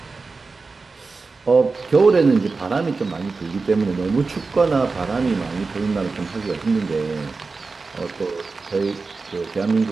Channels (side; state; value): left; quieter; 4.1 dB